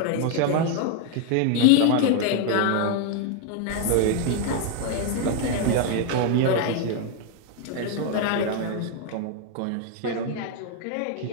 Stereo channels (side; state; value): both; different; correlation 0.01